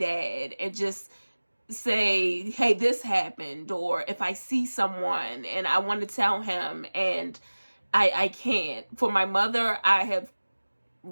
and just say, hey, this happened. Or if I see someone and I want to tell him and I can't. For my mother, I have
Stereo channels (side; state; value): both; inverted; correlation -1.00